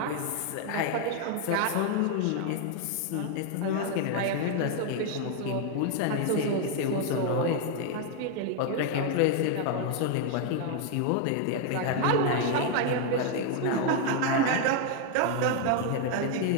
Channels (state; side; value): different; both; correlation 0.00